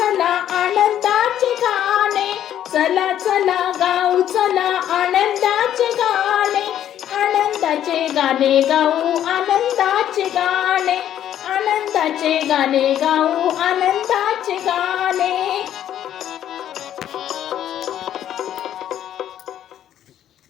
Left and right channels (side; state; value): right; quieter; 10.9 dB